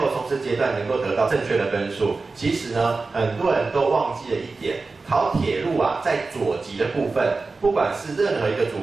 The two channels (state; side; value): quieter; left; 3.9 dB